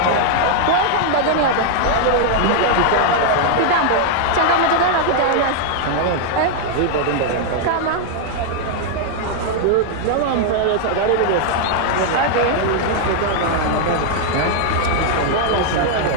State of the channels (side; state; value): both; different; correlation 0.00